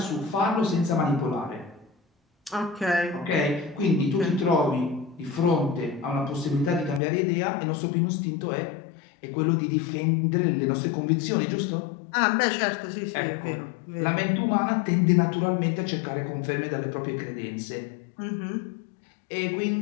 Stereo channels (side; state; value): right; drops out; at 7.0 s